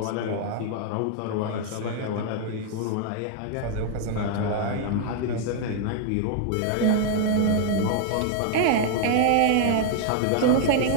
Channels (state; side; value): different; both; correlation 0.00